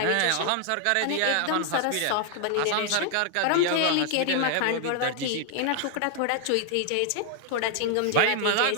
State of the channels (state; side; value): different; both; correlation 0.00